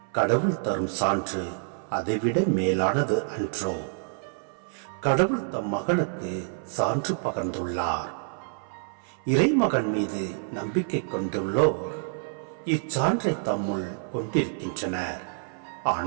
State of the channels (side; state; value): left; silent; 58 dB below the other